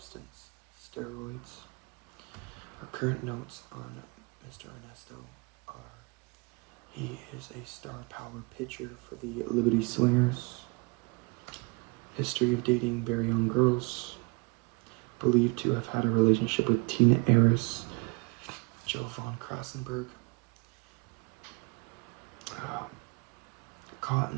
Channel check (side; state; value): left; quieter; 30.1 dB